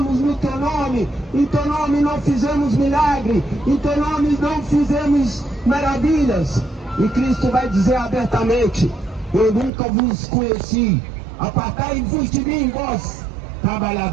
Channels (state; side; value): drops out; left; at 9.7 s